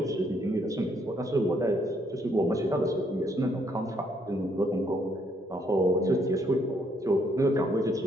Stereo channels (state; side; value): normal; both; correlation 0.70